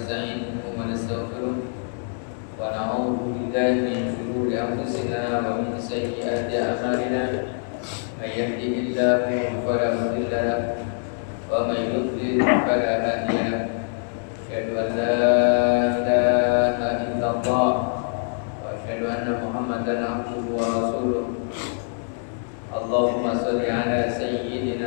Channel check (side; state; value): right; silent; digital silence